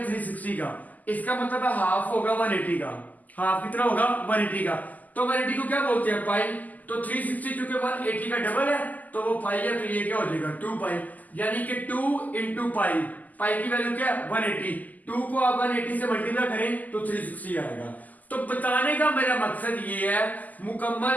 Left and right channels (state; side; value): late; right; 0.080 ms